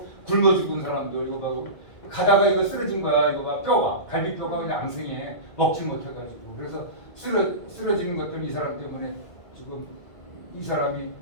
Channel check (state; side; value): late; right; 2.0 ms